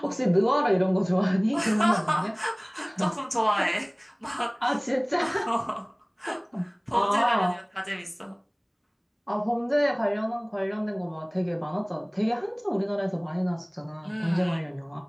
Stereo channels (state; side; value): identical; both; correlation 1.00